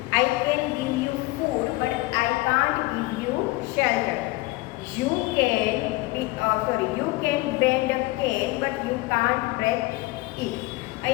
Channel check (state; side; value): quieter; right; 20.5 dB